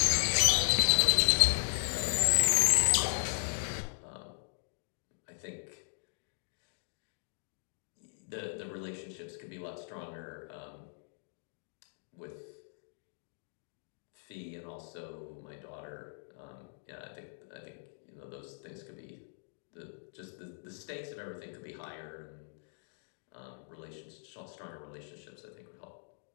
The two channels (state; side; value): silent; right; digital silence